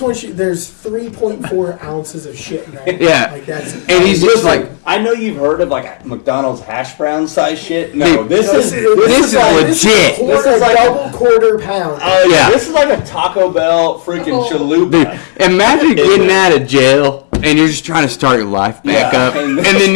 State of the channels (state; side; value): silent; right; digital silence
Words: want you. There's 3.4 ounces of shit in that. Yeah. Like that's, And he's just like, I know you've heard of like McDonald's hash brown size shit. No, this No, is see, this is like legit. This is like double quarter pound. oh yeah, this is like a Taco Bell freaking chalupa. imagine getting there. out of jail and you're just trying to start your life back Yeah. up. And